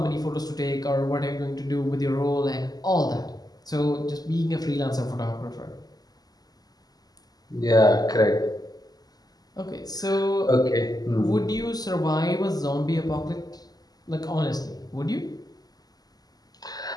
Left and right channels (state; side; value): late; right; 0.19 ms